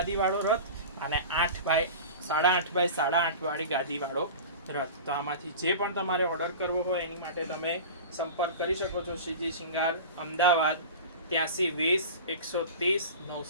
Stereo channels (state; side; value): inverted; both; correlation -0.33